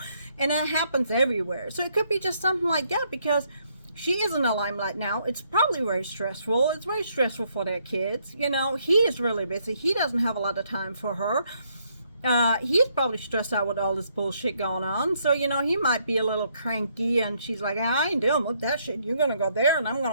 and that happens everywhere. So it could be just something like that because she is in the limelight now. It's probably very stressful. It's very stressful for their kids. You know, he is really busy. He doesn't have a lot of time for her. He's probably stressed out with all this bullshit going on. So, you know, he might be a little cranky and she's like, I ain't dealing with that shit. You're going to go there and I'm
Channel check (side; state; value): both; inverted; correlation -0.72